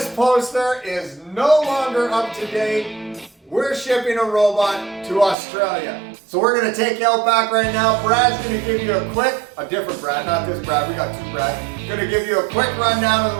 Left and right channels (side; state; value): left; drops out; at 5.4 s